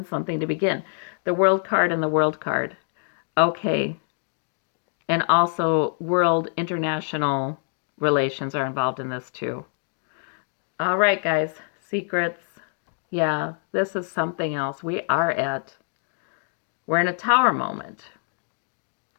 something to begin. The World card and the World card. Okay. And also world international relations are involved in this too. All right, guys. Secrets. Yeah, this is something else. We're in a tower moment.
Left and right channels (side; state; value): right; silent; 56 dB below the other